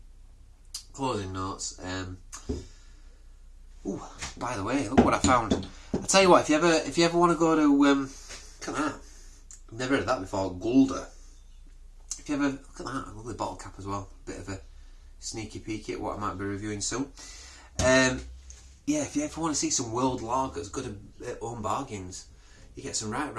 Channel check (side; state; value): both; identical; correlation 1.00